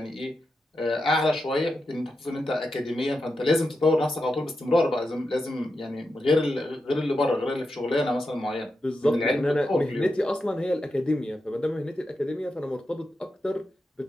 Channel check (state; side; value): normal; both; correlation 0.88